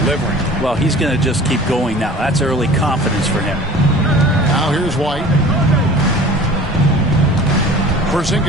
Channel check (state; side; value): normal; both; correlation 0.43